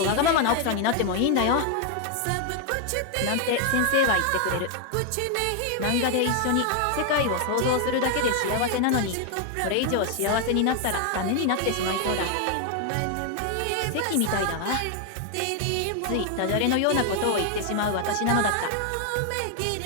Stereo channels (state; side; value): different; both; correlation 0.00